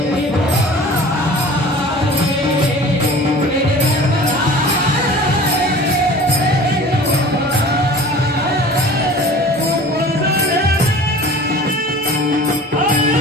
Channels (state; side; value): normal; both; correlation 0.42